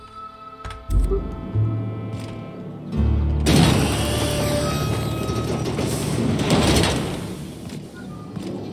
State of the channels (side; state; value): both; identical; correlation 1.00